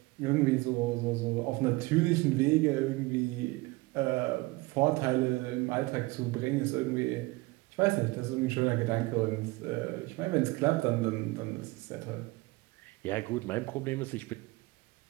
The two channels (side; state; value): left; quieter; 22.4 dB